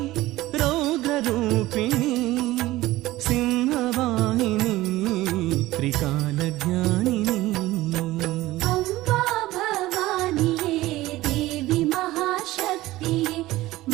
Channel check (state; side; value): quieter; left; 17.3 dB